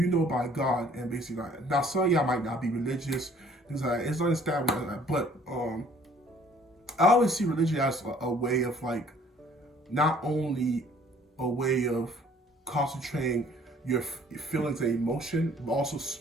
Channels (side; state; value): both; normal; correlation 0.57